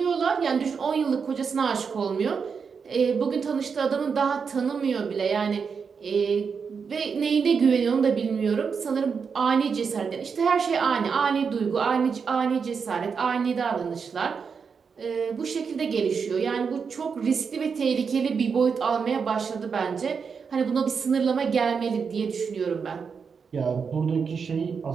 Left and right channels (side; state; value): left; quieter; 5.9 dB